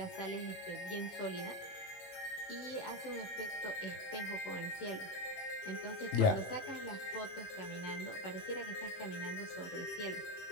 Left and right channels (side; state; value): right; late; 18 ms